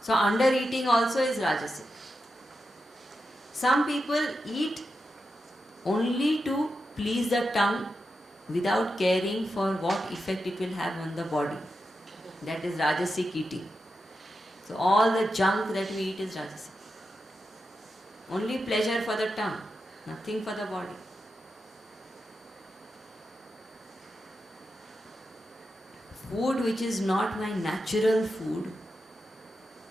So under eating also is Rajasic. Some people eat only to please the tongue without caring for what effect it will have on the body. That is Rajasic eating. So all the junk that we eat is Rajasic. Only pleasure for the tongue, nothing for the body. Food which is not my natural food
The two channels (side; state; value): both; normal; correlation 0.88